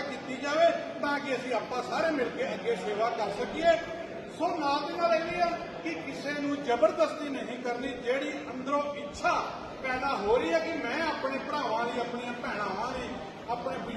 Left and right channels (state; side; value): identical; both; correlation 1.00